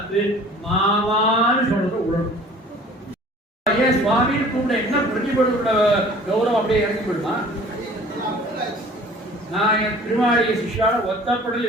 மாமான்னு சொல்றது உடனும். ஏன் சுவாமின்னு கூட என்ன பிரதிபலோட கௌரவம் அப்படியே இறங்கி போயிடுமா? நான் என் திருமாளிகை சிஷ்யால ஒத்தப்படல்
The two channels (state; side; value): normal; both; correlation 0.48